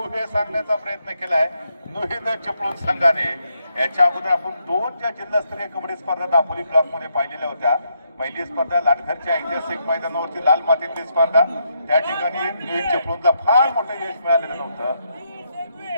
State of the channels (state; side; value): inverted; both; correlation -0.78